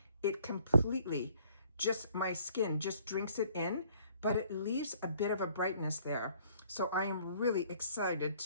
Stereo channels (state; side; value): inverted; both; correlation -0.59